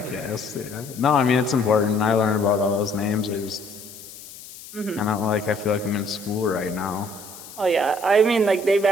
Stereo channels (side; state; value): left; noise; hiss, 16 dB below the sound